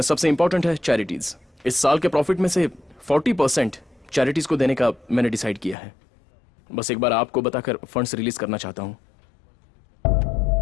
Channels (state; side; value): drops out; right; at 5.8 s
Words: सबसे इंपॉर्टेंट है चैरिटीज। इस साल के प्रॉफिट में से 40% चैरिटीज को देने का मैंने डिसाइड किया है। बस एक बार आपको बताकर फंड्स रिलीज करना चाहता हूँ।